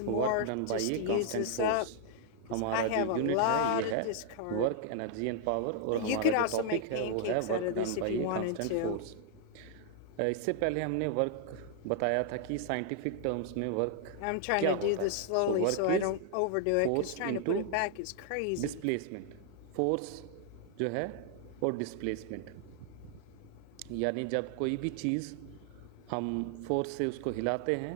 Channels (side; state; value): both; different; correlation 0.00